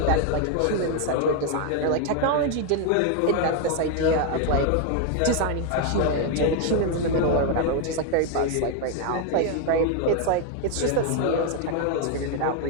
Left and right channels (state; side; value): different; both; correlation 0.01